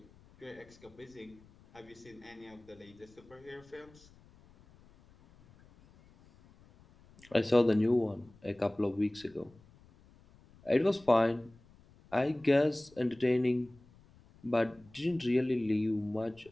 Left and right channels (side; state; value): left; noise; rumble, 26 dB below the sound